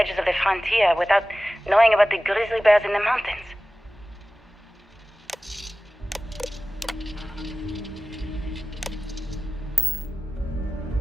of the frontier without knowing about the grizzly bears in the mountains.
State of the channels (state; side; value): normal; both; correlation 0.96